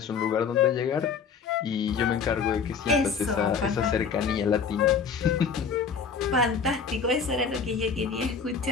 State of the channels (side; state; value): right; quieter; 5.9 dB